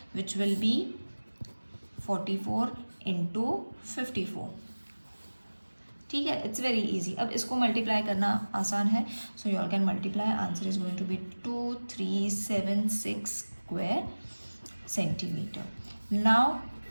विच विल बी 44 इंटू 54. ठीक है, इट्स वेरी इजी. अब इसको मल्टीप्लाई करना आसान है. So you all can multiply. Answer is going to be 2376 square centimeter. Now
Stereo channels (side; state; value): both; inverted; correlation -1.00